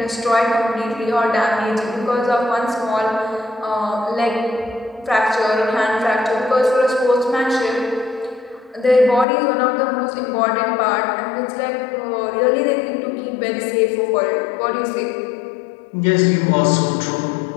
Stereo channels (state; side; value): drops out; right; at 9.2 s